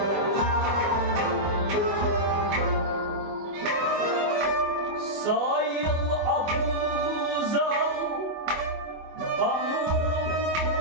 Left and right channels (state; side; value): late; left; 24 ms